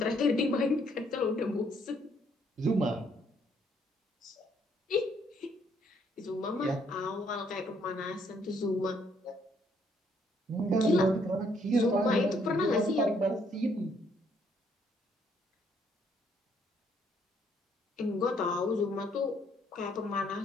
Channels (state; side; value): normal; both; correlation 0.68